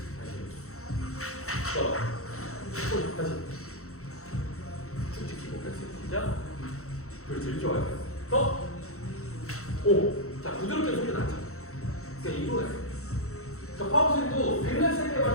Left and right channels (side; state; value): right; late; 0.64 ms